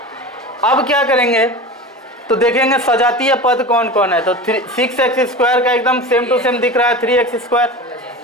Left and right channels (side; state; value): both; normal; correlation 0.31